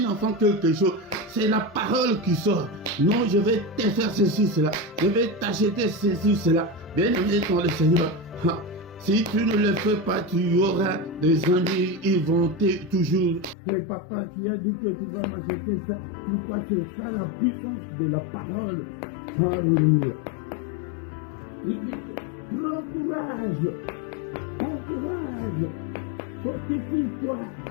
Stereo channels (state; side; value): drops out; right; at 13.6 s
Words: enfant quelque chose, c'est la parole qui sort. Non, je vais te faire ceci, cela. Je vais t'acheter ceci, cela. Bien aimé dans le Seigneur. Si tu ne le fais pas, tu auras des amis, ils vont toujours. Et papa, tu as dit que tu vas m'acheter ça. Pourquoi? C'est ça la puissance de la parole. Alléluia. Il dit que prends courage. Prends courage. Fortifie-toi.